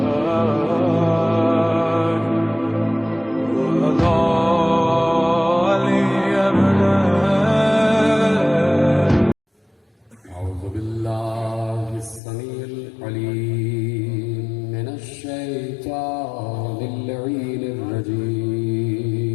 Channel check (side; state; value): right; drops out; at 12.2 s